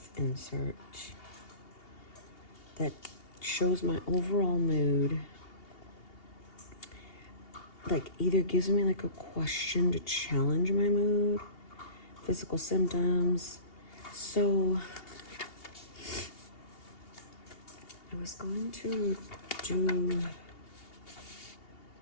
insert that shows my overall mood, like either gives me like a question to challenge my mood, physical symptoms. So I was going to do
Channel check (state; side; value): late; right; 2.8 ms